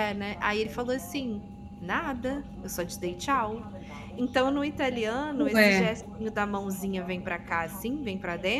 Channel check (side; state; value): both; identical; correlation 1.00